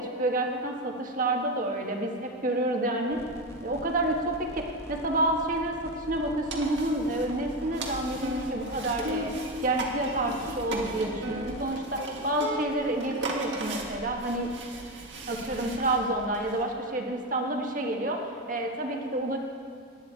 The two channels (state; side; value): normal; both; correlation 0.15